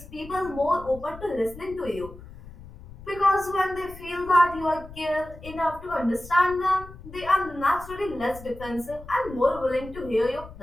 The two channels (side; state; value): left; noise; rumble, 17 dB below the sound